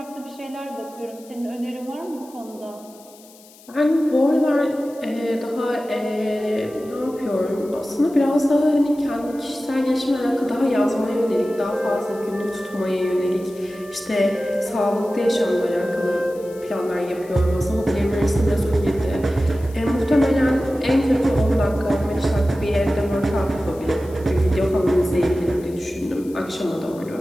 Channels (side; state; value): left; noise; hiss, 24 dB below the sound